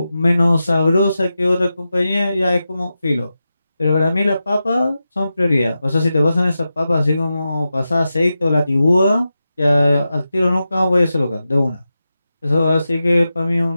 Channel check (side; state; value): both; inverted; correlation -0.91